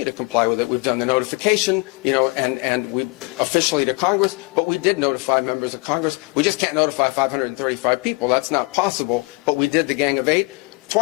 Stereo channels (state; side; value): quieter; right; 29.4 dB